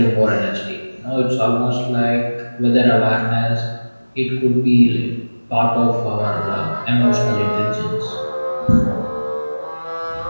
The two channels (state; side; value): inverted; both; correlation -1.00